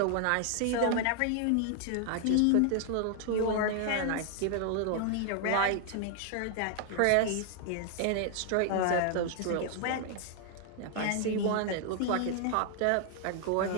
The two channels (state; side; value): different; both; correlation 0.00